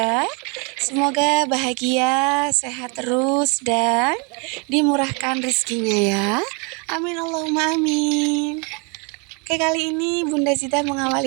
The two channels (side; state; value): left; quieter; 33.3 dB